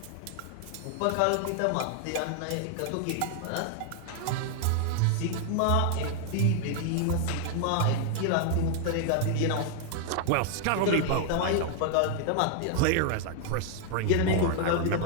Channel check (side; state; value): both; different; correlation 0.00